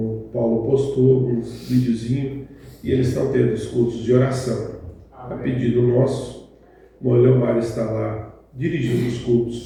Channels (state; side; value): identical; both; correlation 1.00